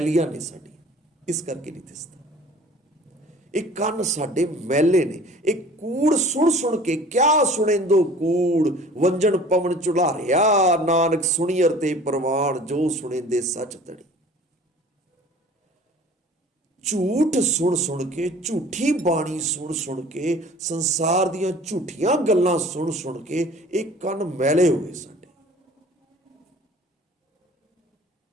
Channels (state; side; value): normal; both; correlation 0.47